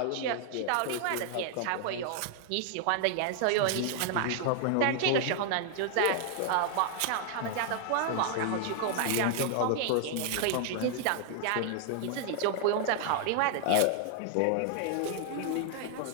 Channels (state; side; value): different; both; correlation 0.00